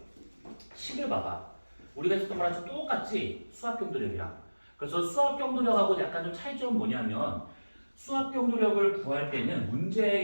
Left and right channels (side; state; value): both; inverted; correlation -1.00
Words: 10을 봐봐. 우리가 했었던 거랑 좀 똑같지? 수압경도력이랑. 그래서 수압경도력하고 약간 좀 차이점은 뭐냐면 수압경도력을 구할 때는